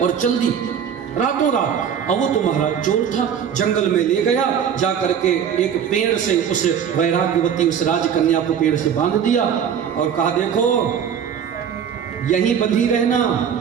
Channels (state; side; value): quieter; left; 8.0 dB